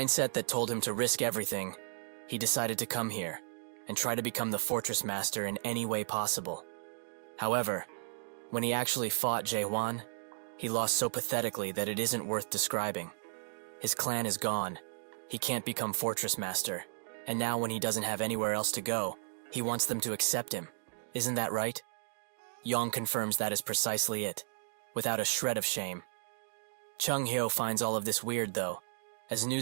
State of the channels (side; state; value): left; silent; digital silence